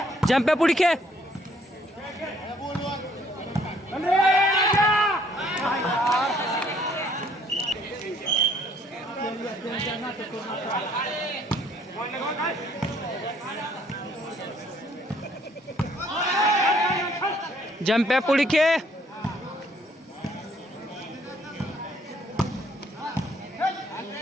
जंप्या पुढे खेळ. जंप्या पुढे खेळ.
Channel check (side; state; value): both; normal; correlation 0.63